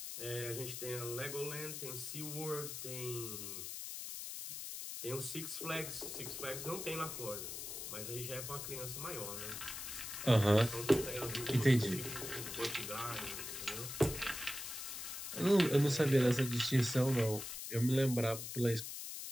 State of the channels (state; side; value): noise; left; hiss, 7 dB below the sound